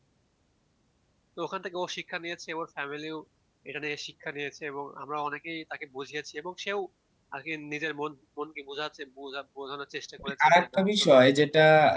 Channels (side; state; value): both; identical; correlation 1.00